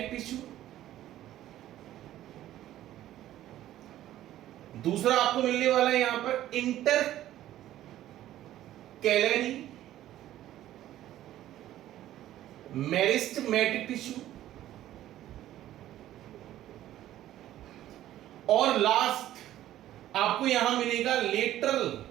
tissue, दूसरा आपको मिलने वाला है यहां पर इंटर कैलरी मेरिस्टेमेटिक टिश्यू, और लास्ट आपको यहां मिलेगा लेटरल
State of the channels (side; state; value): left; quieter; 13.3 dB